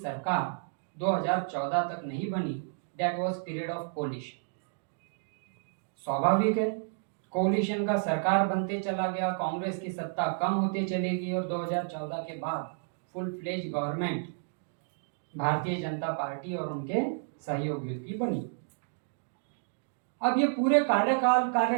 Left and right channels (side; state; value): left; silent; digital silence